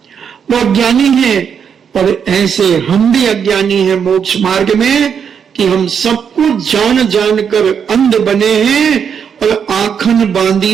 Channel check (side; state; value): left; quieter; 7.3 dB